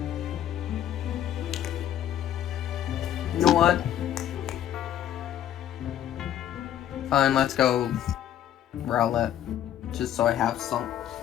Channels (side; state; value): right; quieter; 11.1 dB